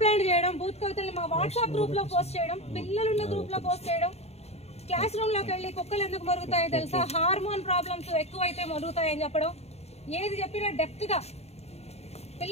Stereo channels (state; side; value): late; right; 0.30 ms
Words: చేయడం, బూత్ కవితల్ని మా వాట్సాప్ గ్రూప్ లో పోస్ట్ చేయడం, పిల్లలున్న గ్రూప్ లో పోస్ట్ చేయడం, క్లాస్ రూమ్ లోకి వెళ్ళి కుక్కలు ఎందుకు మరుగుతాయో తెలుసా, హార్మోన్ ప్రాబ్లమ్స్ ఎక్కువైతే మరుగుతాయని చెప్పడం, ఏది చెప్పినా డెప్త్ గా